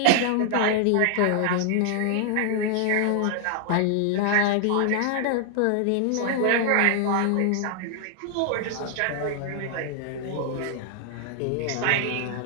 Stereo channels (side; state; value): both; different; correlation 0.00